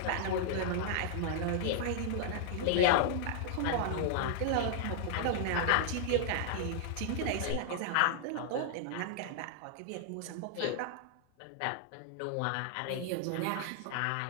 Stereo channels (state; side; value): different; both; correlation -0.01